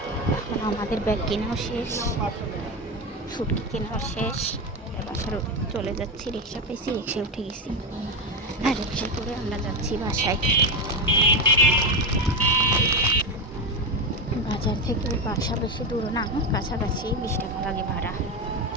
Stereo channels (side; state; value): both; normal; correlation 0.15